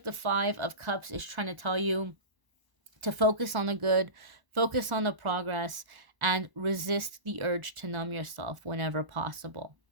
the 5 of Cups is trying to tell you to focus on the good, focus on the progress, and resist the urge to numb yourself whenever possible.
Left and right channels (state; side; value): late; left; 1.0 ms